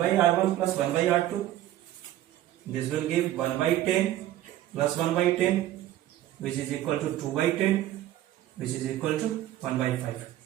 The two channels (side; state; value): left; quieter; 13.6 dB